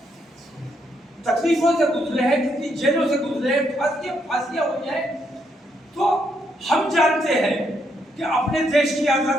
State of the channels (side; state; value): both; normal; correlation 0.76